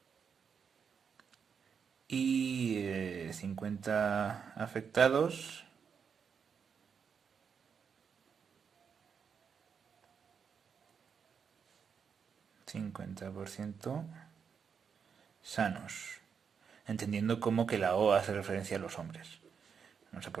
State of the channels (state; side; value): quieter; left; 6.6 dB